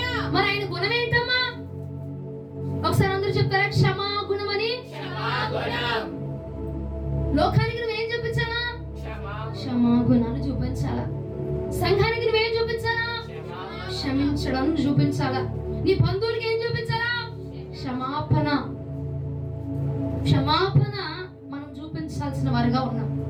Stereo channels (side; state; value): both; identical; correlation 1.00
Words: మరి ఆయన గుణం ఏంటమ్మా? ఒకసారి అందరూ చెప్తారా? క్షమాగుణం అని. లోకానికి నువ్వేం చూపించాలా? క్షమాగుణాన్ని చూపించాలా. సంఘానికి నువ్వేం చూపించాలా? క్షమించడం చూపించాలా. నీ బంధువులకి ఏం చూపించాలా? క్షమాపణ. క్షమాపణ మనం చూపించాల్సిన వారుగా ఉన్నాం.